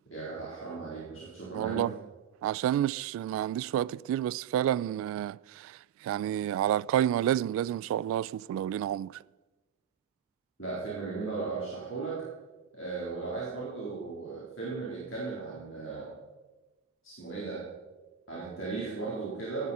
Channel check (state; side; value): quieter; left; 8.5 dB